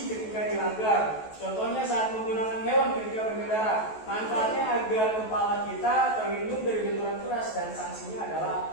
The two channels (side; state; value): right; late; 14 ms